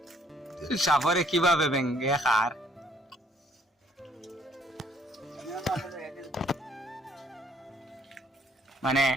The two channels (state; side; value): normal; both; correlation 0.63